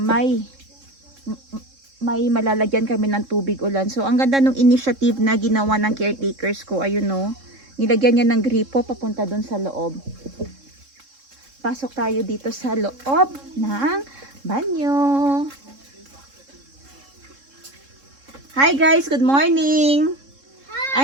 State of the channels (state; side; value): late; left; 3.7 ms